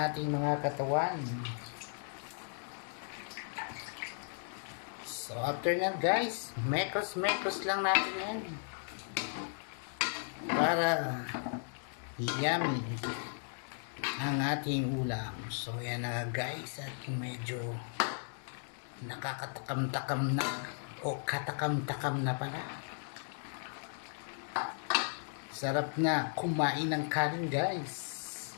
mga katawan. So after na guys, mekos lang natin yan para yummy ang ating ulam. So yan na guys, at medyo nakakatakam-takam na o katakam-takam na pala. Sarap na kumain ng kanin guys.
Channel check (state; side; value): silent; right; digital silence